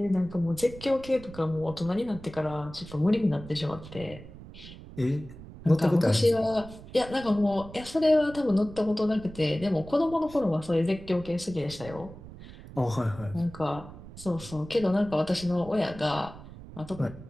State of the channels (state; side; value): noise; right; rumble, 16 dB below the sound